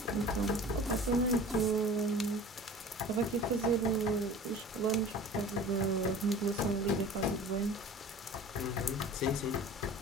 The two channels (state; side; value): normal; both; correlation 0.41